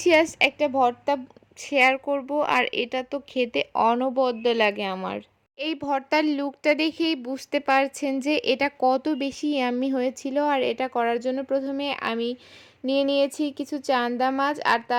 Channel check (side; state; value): both; identical; correlation 1.00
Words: একটা ভর্তা শেয়ার করব। আর এটা তো খেতে অনবদ্য লাগে আমার। এই ভর্তার লুকটা দেখেই বুঝতে পারছেন যে এটা কত বেশি ইয়াম্মি হয়েছিল। আর এটা করার জন্য প্রথমে আমি নিয়ে নিয়েছি কিছু চান্দা মাছ আর